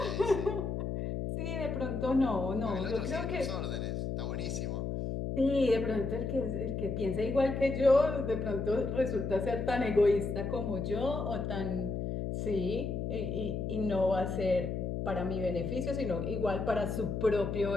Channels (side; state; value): left; noise; hum, 2 dB below the sound